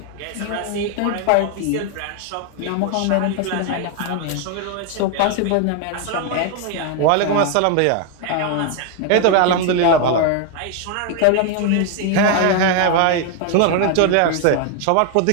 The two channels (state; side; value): different; both; correlation 0.01